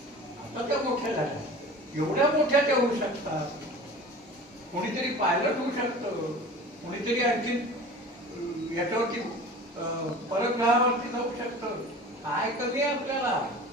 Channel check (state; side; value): normal; both; correlation 0.39